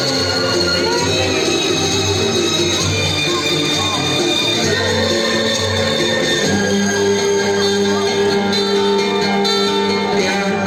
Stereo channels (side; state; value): both; identical; correlation 1.00